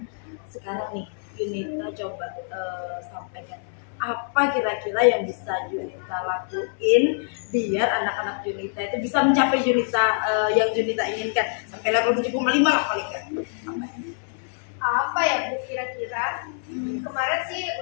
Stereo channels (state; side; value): silent; right; 62 dB below the other